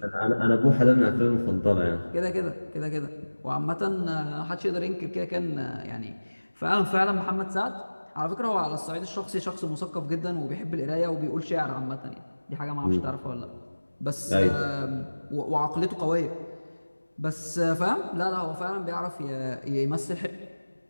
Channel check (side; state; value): both; inverted; correlation -1.00